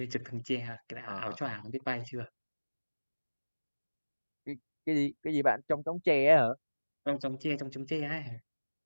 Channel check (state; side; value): inverted; both; correlation -1.00